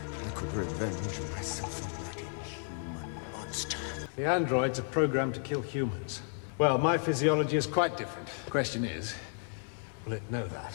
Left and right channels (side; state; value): right; silent; 56 dB below the other